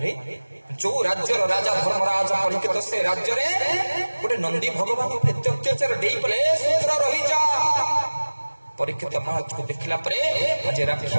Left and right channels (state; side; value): inverted; both; correlation -1.00